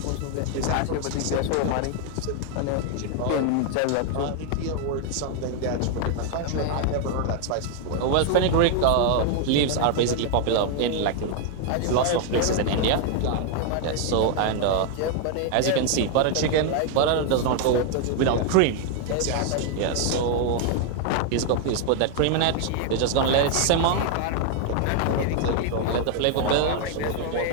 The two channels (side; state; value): both; different; correlation 0.00